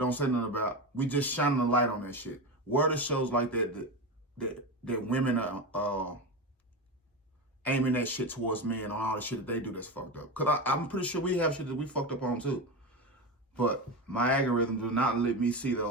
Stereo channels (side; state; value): both; normal; correlation 0.20